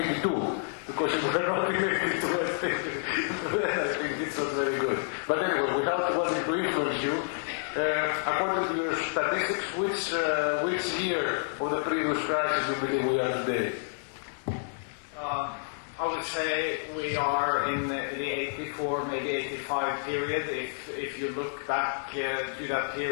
because if we are not in 82, I think it's not very good. But anyway, without wanting to influence you, according to your statistics, which year of the previous crisis you believe we are today? I would say we are in the 84, maybe 85 period. If you look back to that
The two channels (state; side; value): silent; right; 58 dB below the other